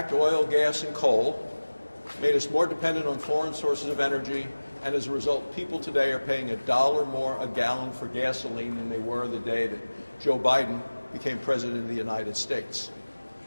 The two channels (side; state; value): both; inverted; correlation -1.00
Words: oil, gas, and coal, made us more dependent on foreign sources of energy, and as a result, people today are paying $1 more a gallon for gasoline than they were the day that Joe Biden became President of the United States.